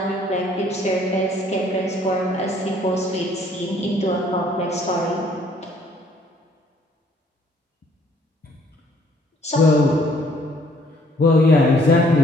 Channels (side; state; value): both; normal; correlation 0.62